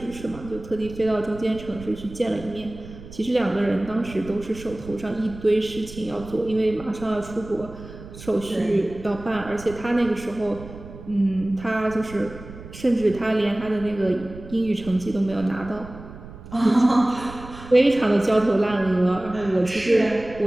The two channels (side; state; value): right; noise; rumble, 15 dB below the sound